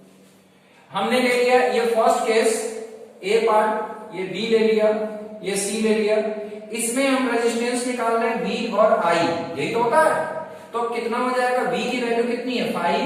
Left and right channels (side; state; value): both; identical; correlation 1.00